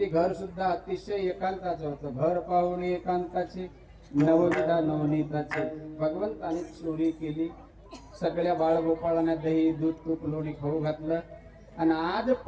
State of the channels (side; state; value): both; identical; correlation 1.00